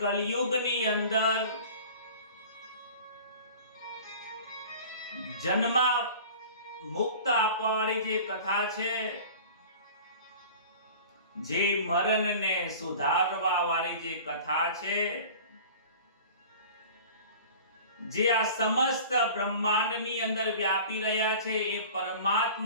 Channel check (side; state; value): both; inverted; correlation -0.41